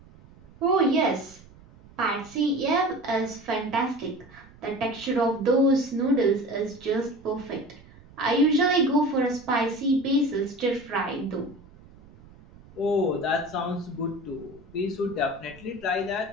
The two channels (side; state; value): right; noise; rumble, 23 dB below the sound